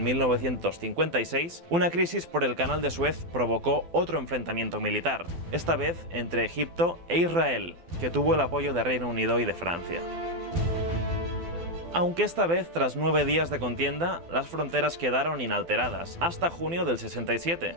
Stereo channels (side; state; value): left; late; 12 ms